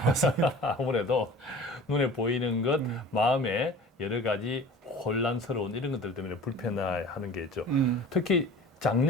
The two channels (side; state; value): both; normal; correlation 0.41